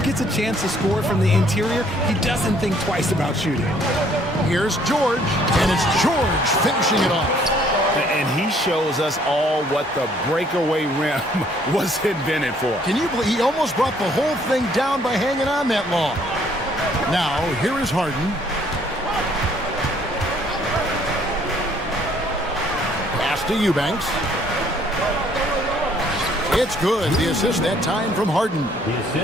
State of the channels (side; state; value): both; normal; correlation 0.63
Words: gets a chance to score from the interior, he doesn't think twice about shooting. Here's George, and it's George finishing it off. And he shows us all what the breakaway rim was invented for. Can you believe he almost brought the whole thing down by hanging on that long? Now, here is Harden. Pass to Eubanks. It's good. The assist that time from Harden.